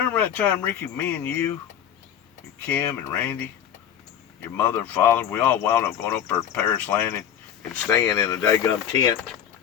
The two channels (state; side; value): quieter; right; 9.4 dB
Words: that time, Ricky, me and you, and Kim and Randy, your mother and father, we all wound up going up there to Paris Landing and staying in a daggum tent